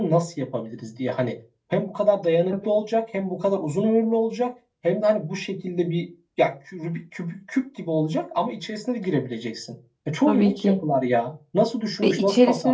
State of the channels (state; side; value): identical; both; correlation 1.00